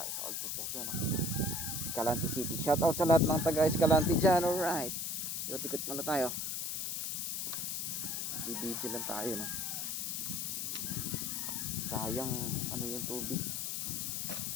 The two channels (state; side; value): noise; left; hiss, 2 dB below the sound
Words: sa Old Poblacion. Escalante City. Shout out sa lahat ng taga Escalante dyan. Alright. Ikot-ikot muna tayo. Bibidyo lang tayo, no? Sayang ano yung tubig.